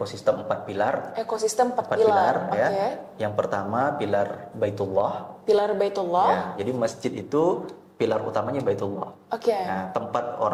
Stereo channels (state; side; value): identical; both; correlation 1.00